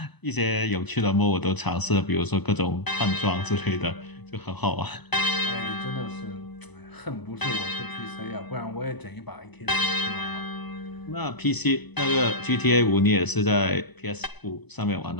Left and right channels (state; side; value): late; right; 1.0 ms